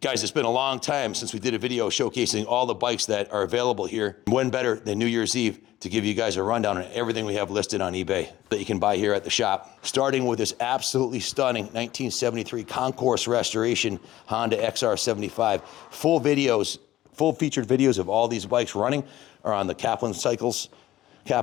Guys, it's been a long time since we did a video showcasing all the bikes that are available here. When better than New Year's Eve to give you guys a rundown on everything we have listed on eBay that you can buy here at the shop. Starting with this absolutely stunning 1973 Concourse restoration Honda XR75. Full featured videos of all these bikes running are on the Kaplan Cycles,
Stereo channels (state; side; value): quieter; right; 14.8 dB